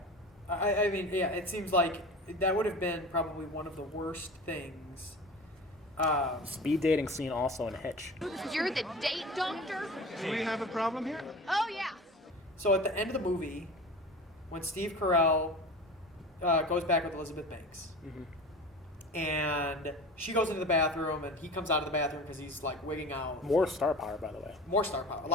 I mean, yeah, it seems like that would have been probably one of the worst things. Speed dating scene also in Hitch. You're the date doctor? Do we have a problem here? Oh, yeah. So at the end of the movie, when Steve Carell goes back with Elizabeth Banks, and she goes into the bathroom, and he comes out of the bathroom because he's like wigging out. More star power, by the way. More star power.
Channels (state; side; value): normal; both; correlation 0.35